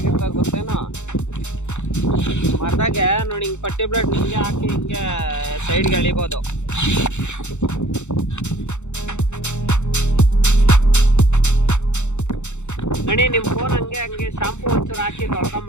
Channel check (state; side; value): late; right; 0.83 ms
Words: ಗೊತ್ತೇನೋ. ಮರದಾಗೆ ನೋಡಿ, ಹಿಂಗೆ ಪಟ್ಟಿ ಬ್ಲೇಡ್ ಹಿಂಗೆ ಹಾಕಿ ಹಿಂಗೆ ಸೈಡ್ಗೆ ಎಳಿಬೋದು. ಗಣಿ, ನಿಮ್ಮ ಫೋನ್ ಹಂಗೆ ಶಾಂಪೂ ಒಂಚೂರು ಹಾಕಿ